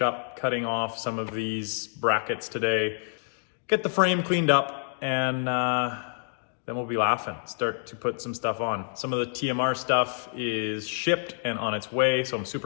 up cutting off some of these brackets today, get the frame cleaned up, and then we'll be laughing, start to put some stuff on. Some of the TMR stuff is shipped and on its way, so I'm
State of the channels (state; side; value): silent; right; 60 dB below the other